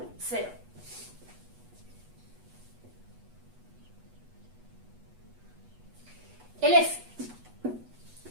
0. El F.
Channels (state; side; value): late; left; 8.2 ms